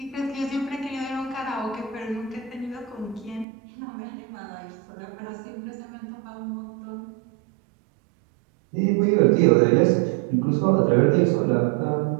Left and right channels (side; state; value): left; drops out; at 3.5 s